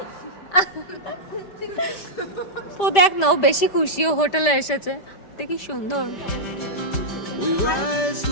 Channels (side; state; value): right; late; 5.0 ms